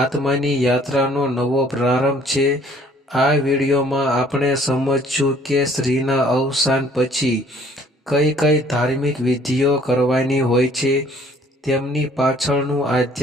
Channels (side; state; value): both; normal; correlation 0.57